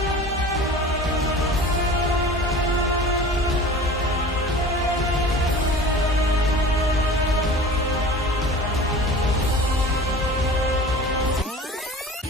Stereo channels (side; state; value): both; normal; correlation 0.39